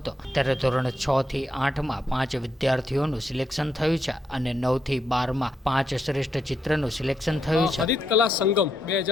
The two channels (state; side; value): normal; both; correlation 0.80